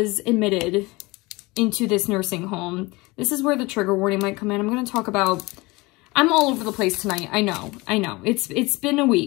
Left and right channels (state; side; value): quieter; right; 23.2 dB